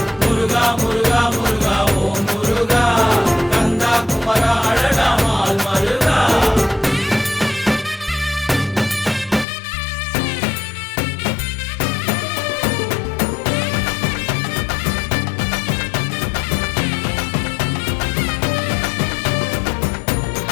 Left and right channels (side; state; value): right; drops out; at 9.5 s